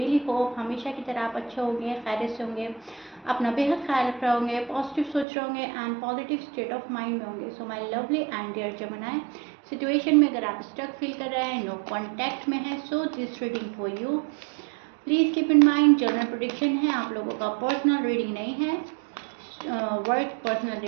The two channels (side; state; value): left; drops out; at 5.2 s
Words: होप हमेशा की तरह आप अच्छे होंगे, खैरियत से होंगे, अपना बेहद ख्याल रख रहे होंगे, पॉजिटिव सोच रहे होंगे and positive state of mind में होंगे। So my lovely and dear जमनाई, सिचुएशन में अगर आप स्टक फील कर रहे हैं, नो कॉन्टैक्ट में है, so this reading for you. Please keep in mind general prediction है, आप लोगों का पर्सनल रीडिंग नहीं है। वर्क पर्सनल